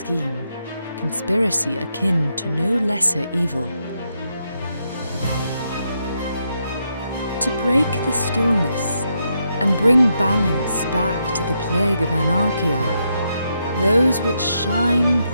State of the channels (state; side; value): inverted; both; correlation -0.80